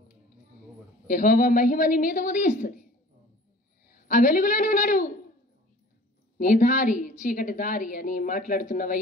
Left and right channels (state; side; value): normal; both; correlation 0.47